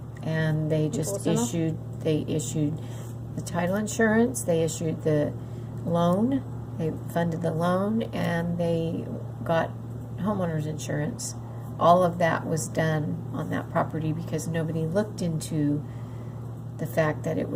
And they just was enough? they issued the title insurance, they issued the loan, they funded the loan, and they got homeowners insurance. All of that was done on that property because nobody looked into the fact that it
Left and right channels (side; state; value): both; identical; correlation 1.00